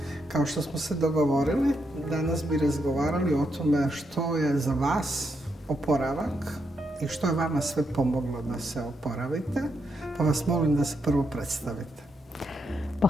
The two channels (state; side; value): normal; both; correlation 0.81